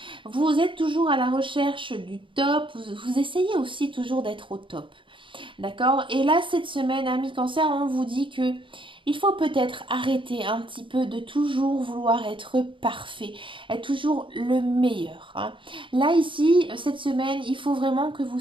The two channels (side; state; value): left; late; 0.24 ms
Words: Vous êtes toujours à la recherche du top, vous essayez aussi toujours d'être au top. D'accord? Et là, cette semaine, ami cancer, on vous dit que il faut peut-être arrêter un petit peu de toujours vouloir être parfait, être toujours le meilleur. Hein. Là, ici, cette semaine, il faut vraiment que vous